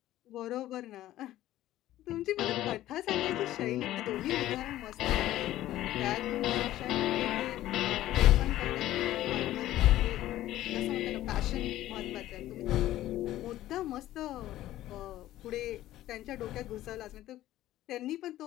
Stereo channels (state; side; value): quieter; right; 14.4 dB